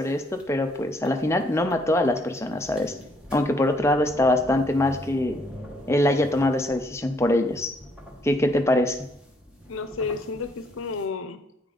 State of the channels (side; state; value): both; normal; correlation 0.68